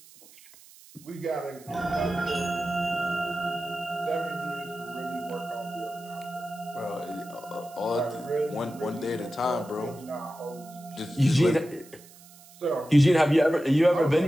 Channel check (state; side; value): noise; right; hiss, 22 dB below the sound